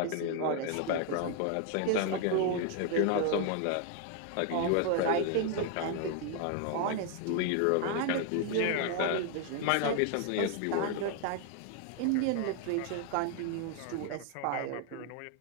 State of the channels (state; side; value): different; both; correlation 0.00